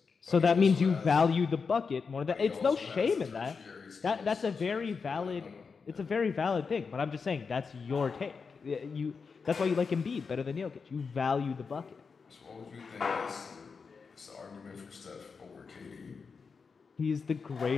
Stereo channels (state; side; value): quieter; right; 5.2 dB